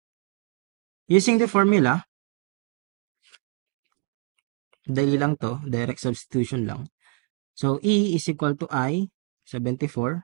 using the formula, dali lang to, direct substitution lang. So, E is equal to I,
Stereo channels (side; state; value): left; quieter; 36.5 dB